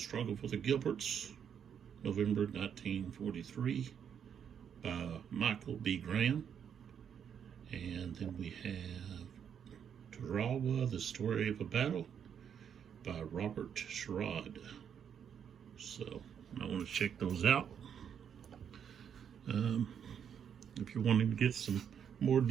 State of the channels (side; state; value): left; quieter; 8.1 dB